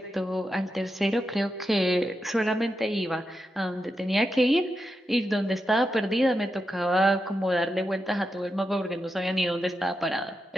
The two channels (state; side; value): normal; both; correlation 0.87